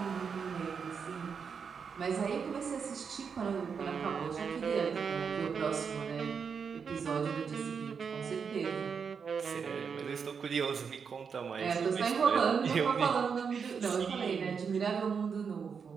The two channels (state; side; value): quieter; left; 6.2 dB